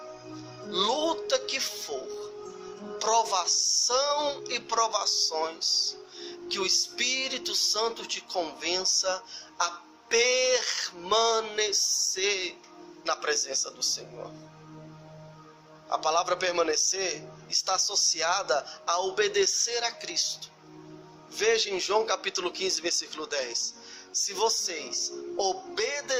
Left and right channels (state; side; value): identical; both; correlation 1.00